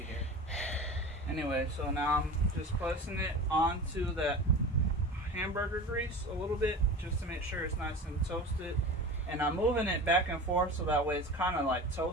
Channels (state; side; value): normal; both; correlation 0.33